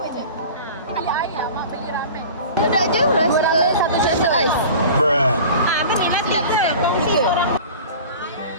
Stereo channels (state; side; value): inverted; both; correlation -0.39